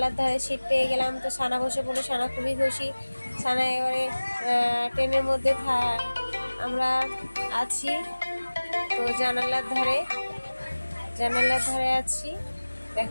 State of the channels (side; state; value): both; inverted; correlation -1.00